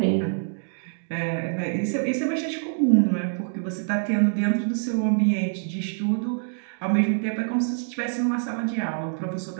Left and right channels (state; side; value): silent; left; digital silence